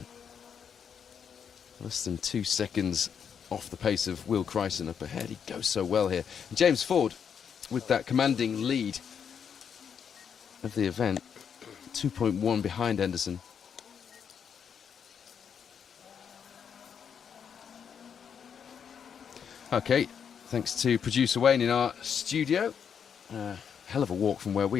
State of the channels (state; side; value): quieter; right; 7.4 dB